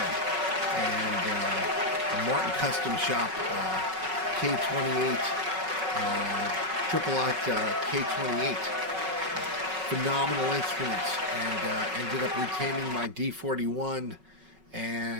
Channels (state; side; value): late; left; 5.4 ms